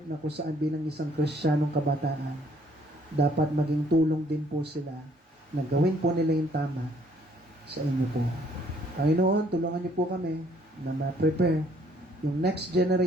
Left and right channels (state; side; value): normal; both; correlation 0.63